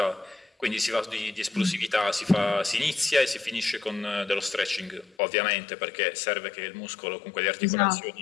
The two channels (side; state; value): right; drops out; at 5.2 s